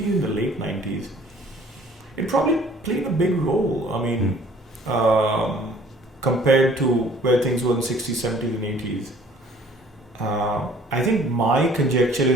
even the late 90s, it probably played a big role. I mean, compared to where things were in the 60s, 70s, and 80s. I think my conjecture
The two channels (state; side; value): normal; both; correlation 0.55